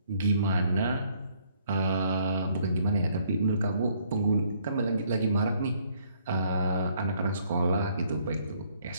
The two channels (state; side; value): inverted; both; correlation -0.65